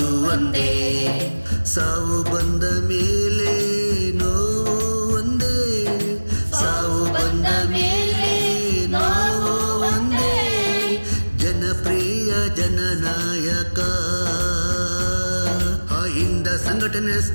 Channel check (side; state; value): both; inverted; correlation -1.00